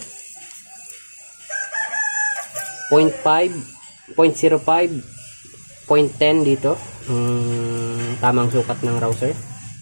0.5, 0.05, 0.10 dito. Tamang sukat ng rouser.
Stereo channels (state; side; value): inverted; both; correlation -1.00